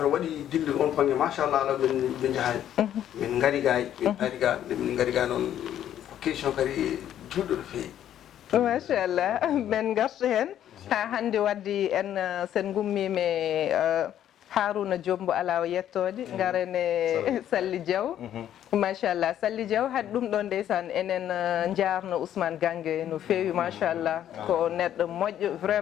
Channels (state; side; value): quieter; right; 10.9 dB